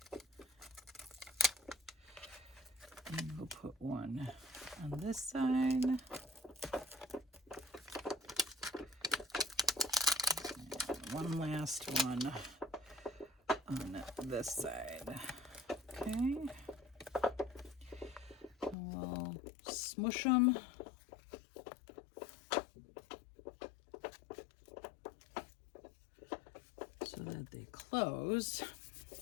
And we'll put one on this side. And one last one on this side. Okay. And we'll smush them. So that they close.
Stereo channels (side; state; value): right; drops out; at 18.8 s